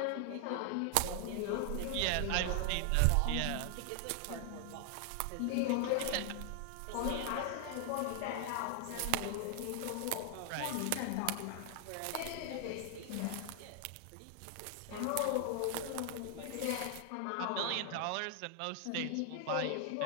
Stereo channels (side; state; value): both; different; correlation 0.00